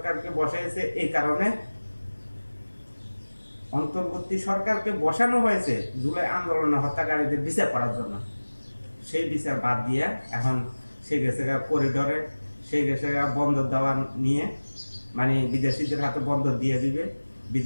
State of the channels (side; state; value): both; inverted; correlation -1.00